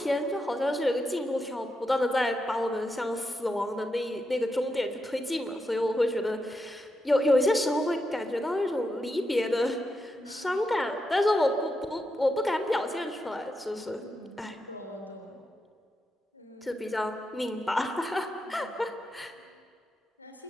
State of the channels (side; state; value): both; normal; correlation 0.85